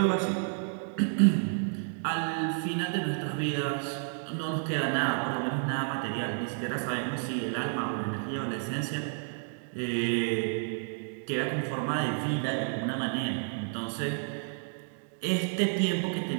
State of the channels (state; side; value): silent; left; 57 dB below the other